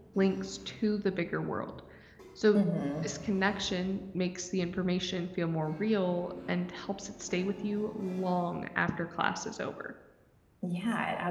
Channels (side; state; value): both; identical; correlation 1.00